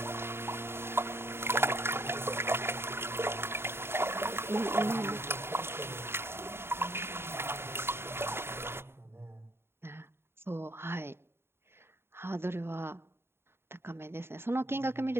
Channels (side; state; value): left; late; 0.11 ms